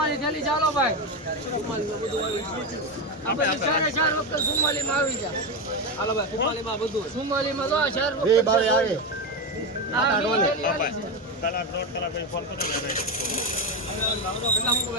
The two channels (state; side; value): normal; both; correlation 0.13